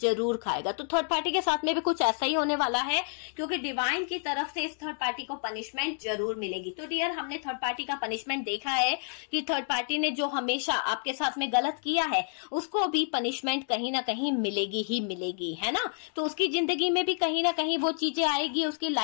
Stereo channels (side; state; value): right; silent; 58 dB below the other